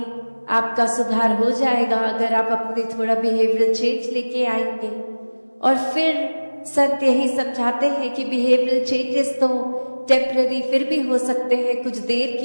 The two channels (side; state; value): both; inverted; correlation -1.00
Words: आपका सुधार हो जाएगा, अगर आप अपने थोड़ा बिहेवियरल चेंज लेके आएंगे। और फिर संत यही समझाते हैं कि बिहेवियरल चेंजेस तो टेम्पररी फिर भी हो सकते हैं, कुछ देर